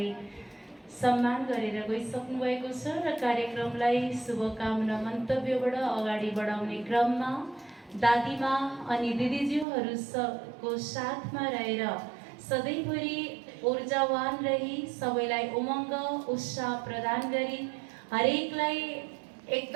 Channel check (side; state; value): left; drops out; at 9.7 s